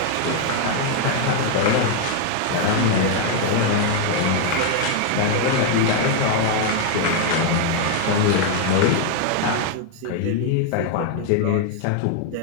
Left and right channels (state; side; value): different; both; correlation 0.00